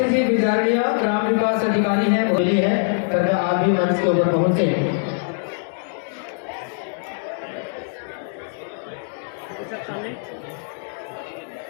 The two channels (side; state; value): right; silent; 64 dB below the other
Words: ग्राम विकास अधिकारी हैं, बोली है, कृपया आप भी मंच के ऊपर पहुंचे।